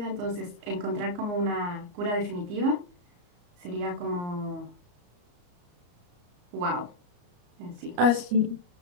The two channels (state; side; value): late; left; 34 ms